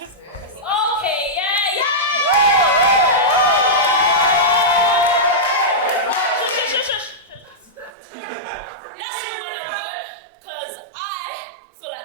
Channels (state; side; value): drops out; left; at 7.9 s